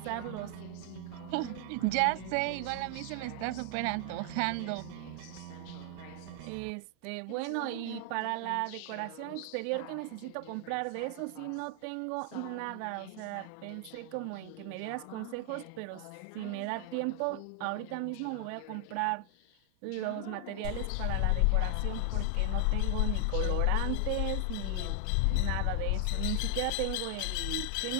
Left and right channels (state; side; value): different; both; correlation 0.00